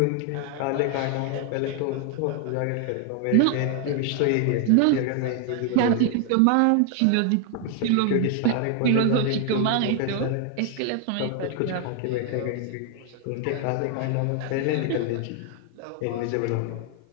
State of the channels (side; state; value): both; different; correlation 0.00